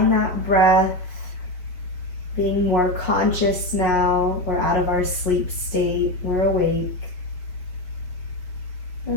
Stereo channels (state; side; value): late; right; 5.5 ms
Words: that breath, being more conscious now. We're out of our sleep state, we're awake.